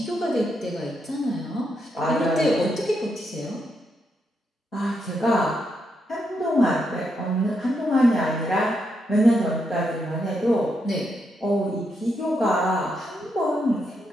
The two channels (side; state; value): both; normal; correlation 0.81